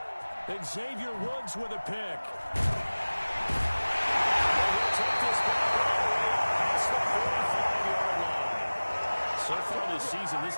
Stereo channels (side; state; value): both; inverted; correlation -1.00